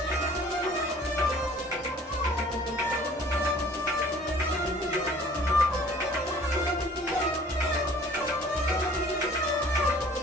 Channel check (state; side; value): normal; both; correlation 0.52